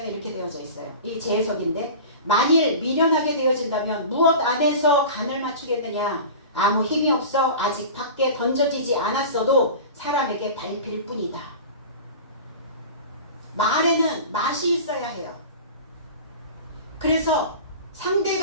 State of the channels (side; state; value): both; inverted; correlation -0.35